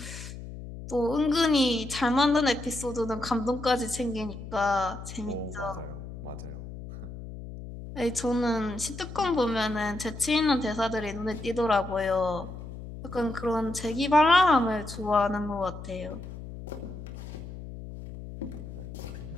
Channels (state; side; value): noise; left; hum, 11 dB below the sound